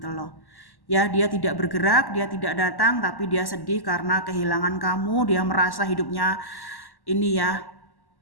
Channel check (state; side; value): late; right; 1.1 ms